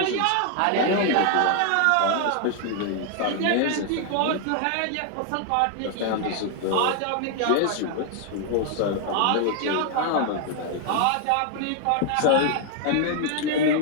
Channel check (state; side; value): different; both; correlation 0.00